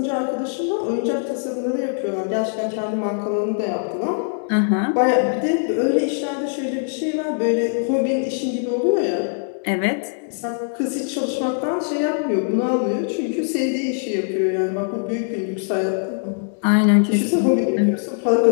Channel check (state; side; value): silent; right; digital silence